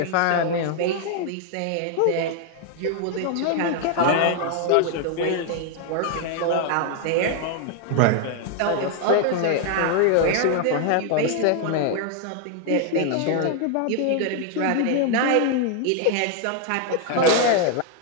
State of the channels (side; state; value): both; different; correlation 0.00